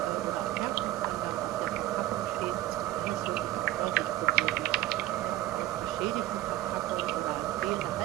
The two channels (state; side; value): quieter; left; 15.2 dB